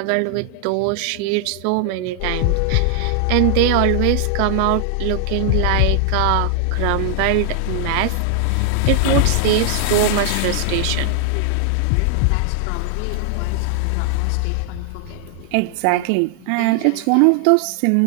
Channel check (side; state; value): both; different; correlation 0.00